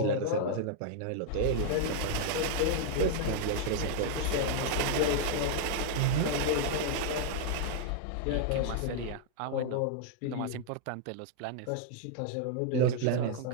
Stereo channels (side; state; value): both; different; correlation -0.01